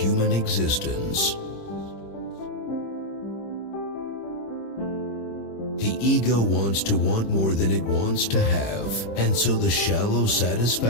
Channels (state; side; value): late; right; 26 ms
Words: existence. The ego wants to want more than it wants to have, and so the shallow